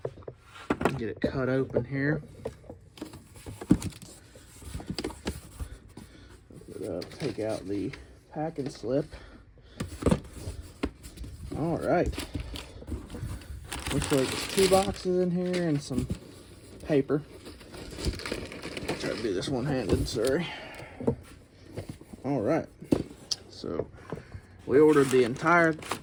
Get it cut open here. Take out the packing slip. All right. Looks like there's 2 boxes in here and some paper. I'll try to do this one-handed, sorry. All right. So we ordered the entire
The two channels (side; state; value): both; identical; correlation 1.00